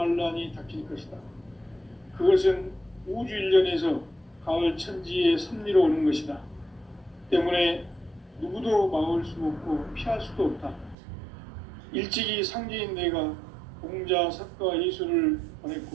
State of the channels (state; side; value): drops out; left; at 11.0 s